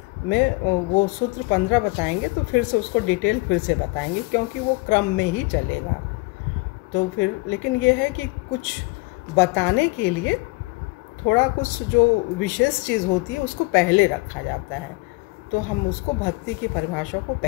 में वो सूत्र 15 बताएंगे तो फिर से उसको डिटेल फिर से बताएंगे, क्योंकि वो क्रम में ही चलेगा। तो फिर लेकिन ये है कि कुछ बताने के लिए थोड़ा कुछ जो विशेष चीज़ होती है उसको पहले रखा जाता है। तो हम उसको भक्ति की परिभाषा को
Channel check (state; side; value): quieter; right; 24.7 dB